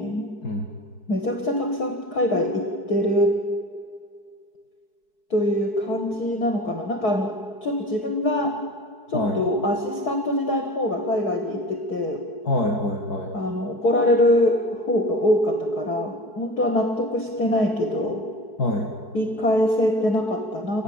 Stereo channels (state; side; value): late; right; 4.7 ms